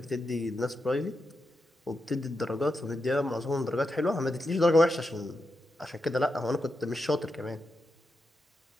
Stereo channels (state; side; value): normal; both; correlation 0.87